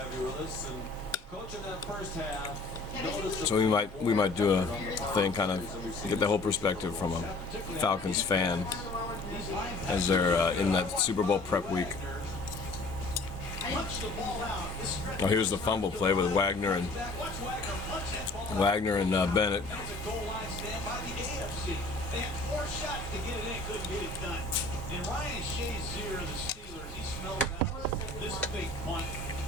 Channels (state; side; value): quieter; right; 3.1 dB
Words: So we might do a thing, kind of get the whole perspective from a Falcons fan as they're in that Super Bowl prep week. Oh, here's the fumble play with Wagner and Bennett.